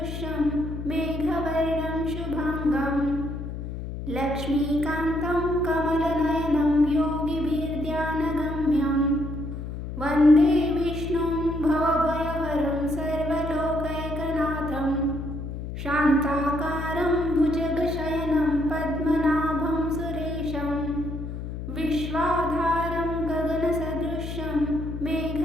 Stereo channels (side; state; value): left; noise; hum, 7 dB below the sound